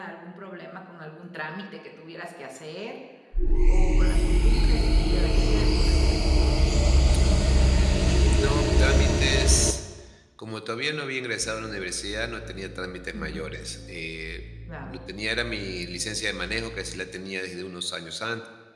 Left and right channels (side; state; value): both; identical; correlation 1.00